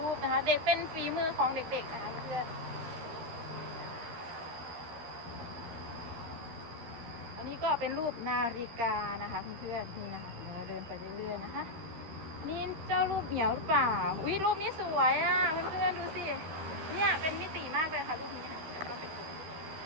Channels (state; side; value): late; left; 13 ms